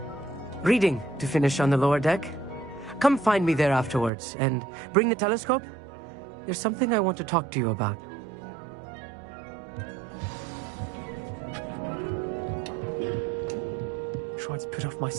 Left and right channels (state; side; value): drops out; left; at 4.1 s